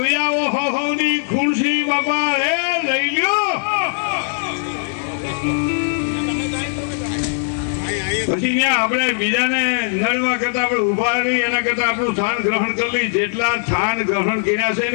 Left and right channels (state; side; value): silent; right; 66 dB below the other